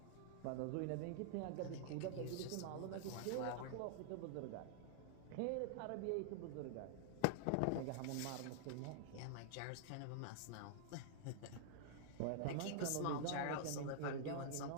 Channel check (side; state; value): both; different; correlation -0.01